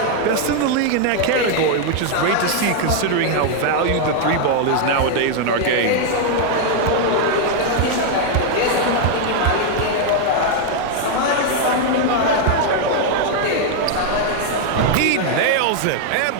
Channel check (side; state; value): both; different; correlation 0.00